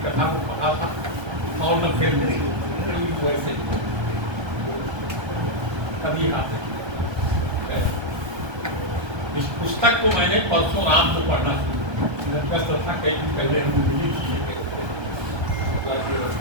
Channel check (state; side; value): late; left; 1.3 ms